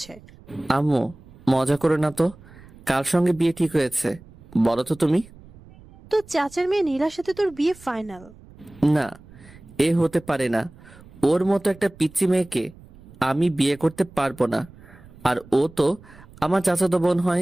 আম্মু, মজা করো না তো। কার সঙ্গে বিয়ে ঠিক হয়েছে বলো তো তুমি? তো চাচার মেয়ে নীলার সাথে তোর বিয়ে ফাইনাল। না, এ হতে পারে না। ওর মতো একটা পিচ্চি মেয়েকে আমি বিয়ে করতে পারবো না। আর ও তো আমার চাচাতো বোন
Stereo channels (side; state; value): right; noise; rumble, 22 dB below the sound